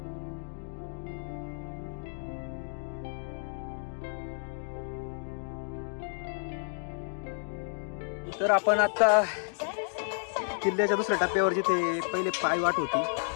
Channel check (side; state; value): right; silent; digital silence